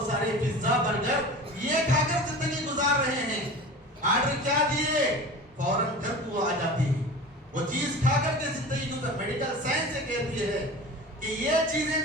سارے پیزا، برگر یہ کھا کر زندگی گزار رہے ہیں. آرڈر کیا دیے، فوراً گھر کو آ جاتی ہے وہ چیز کھا کر کے زندگی گزار. میڈیکل سائنس یہ کہتی ہے کہ یہ چیزیں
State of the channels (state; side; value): normal; both; correlation 0.35